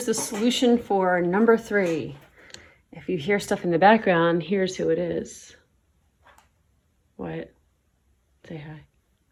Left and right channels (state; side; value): identical; both; correlation 1.00